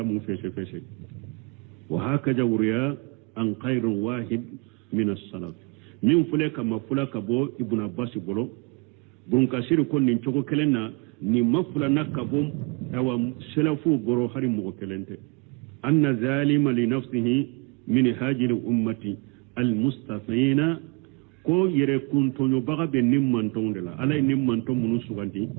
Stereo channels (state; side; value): quieter; left; 30.1 dB